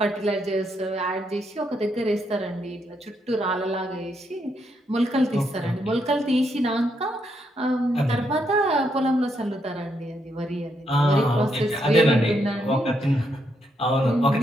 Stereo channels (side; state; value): both; normal; correlation 0.78